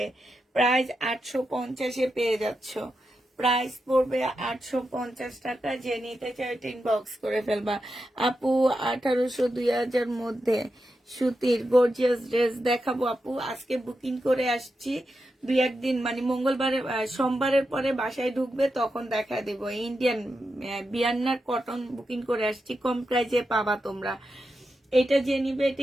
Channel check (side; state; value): both; normal; correlation 0.88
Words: প্রাইস 850-এ পেয়ে যাচ্ছ। প্রাইস পড়বে 850 টাকা। যে নিতে চাই ইনবক্স করে ফেলবা। আপু 1800-2000 মধ্যে সুতির গর্জিয়াস ড্রেস দেখাবো আপু। আজকে বুকিং করে আসছি, 2-1 দিন মানে মঙ্গলবারে সোমবারের পরে বাসায় ঢুকবে তখন দেখা দেব। ইন্ডিয়ান বিয়ান্নার কটন বুকিং করে আসছি, কম প্রাইজে পাবা তোমরা। এটা যে নিবে এটা